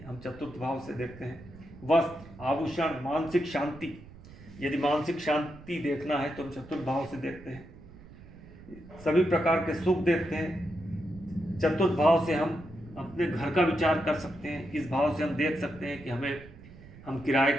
हम चतुर्थ भाव से देखते हैं। वस्त्र, आभूषण, मानसिक शांति, यदि मानसिक शांति देखना है तो हम चतुर्थ भाव से देखते हैं। सभी प्रकार के सुख देखते हैं। चतुर्थ भाव से हम अपने घर का विचार कर सकते हैं। इस भाव से हम देख सकते हैं कि हम किराए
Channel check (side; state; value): right; noise; rumble, 19 dB below the sound